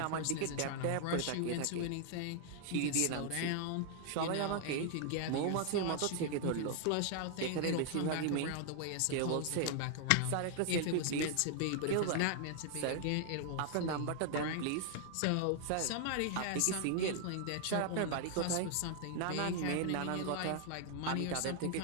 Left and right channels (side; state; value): both; different; correlation 0.00